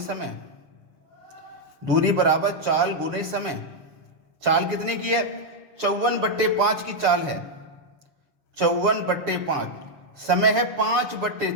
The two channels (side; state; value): left; late; 6.8 ms